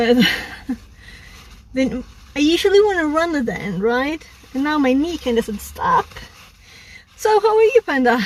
then I usually want to run it then, right? And now my knee kind of doesn't stop. So how are you, Panda?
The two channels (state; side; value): identical; both; correlation 1.00